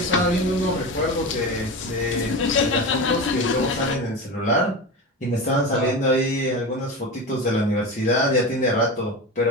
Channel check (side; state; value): both; normal; correlation 0.25